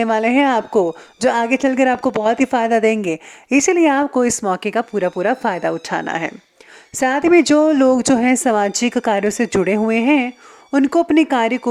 वाले हैं आपको, जो आगे चलकर आपको बहुत ही फ़ायदा देंगे। इसीलिए आपको इस मौके का पूरा पूरा फ़ायदा उठाना है। साथ ही में जो लोग जो हैं सामाजिक कार्यों से जुड़े हुए हैं, उनको अपने कार्य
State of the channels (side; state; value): both; identical; correlation 1.00